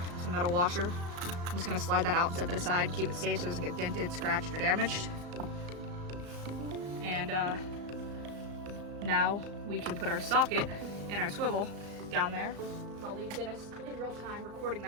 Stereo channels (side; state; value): left; late; 35 ms